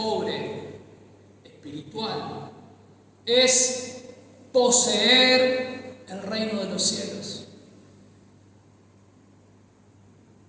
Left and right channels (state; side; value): identical; both; correlation 1.00